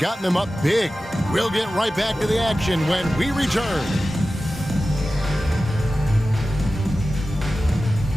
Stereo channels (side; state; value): both; normal; correlation 0.95